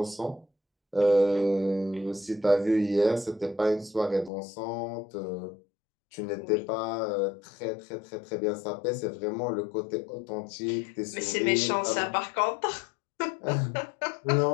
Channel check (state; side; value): drops out; right; at 4.3 s